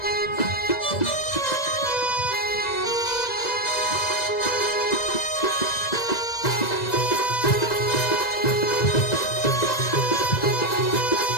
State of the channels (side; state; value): right; late; 2.0 ms